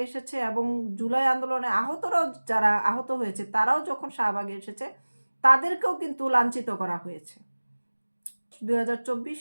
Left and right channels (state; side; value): inverted; both; correlation -1.00